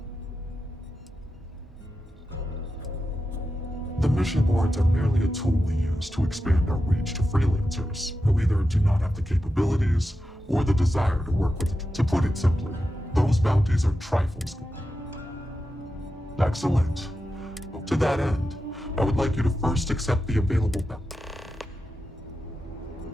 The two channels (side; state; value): both; normal; correlation 0.90